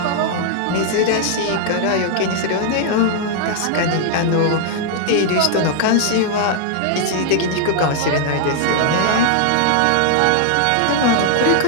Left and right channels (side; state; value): both; different; correlation 0.00